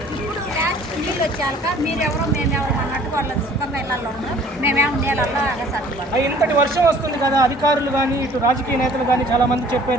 ఇప్పుడు లాస్ట్ నీళ్ళు వచ్చాక మీరెవరో మేమెవరో అన్నట్టు వాళ్ళ సుఖంగా ఇళ్ళల్లో ఉన్నారు. మేమేమో నీళ్ళల్లో అగసట్టుకోవాలి. ఇంతటి వర్షం వస్తుంది కదా, అధికారులు కానీ ఇటు రాజకీయ నేతలు కానీ చాలా మంది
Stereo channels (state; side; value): normal; both; correlation 0.53